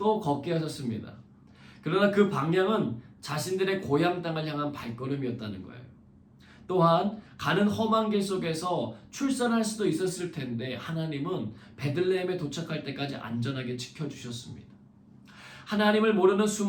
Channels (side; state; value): both; identical; correlation 1.00